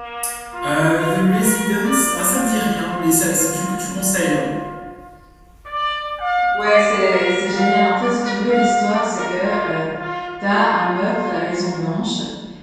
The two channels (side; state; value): both; identical; correlation 1.00